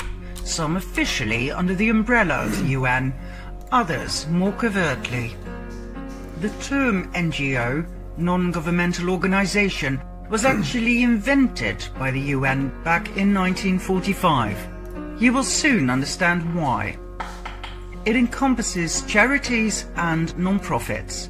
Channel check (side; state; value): both; identical; correlation 1.00